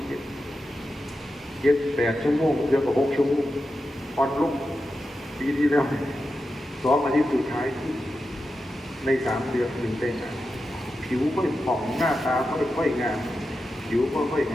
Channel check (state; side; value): normal; both; correlation 0.90